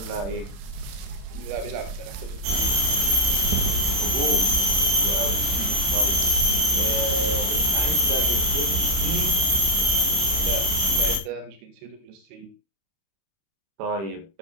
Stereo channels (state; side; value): late; left; 31 ms